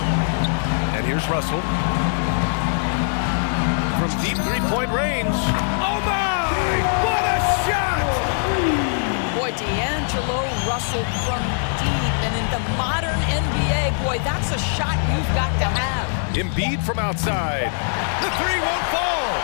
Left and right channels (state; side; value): silent; right; digital silence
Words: And here's Russell. From deep three-point range. Oh my! What a shot! Boy, D'Angelo Russell from deep. And in the modern NBA, boy, that's a shot you've got to have. Embiid from outside. The three won't fall.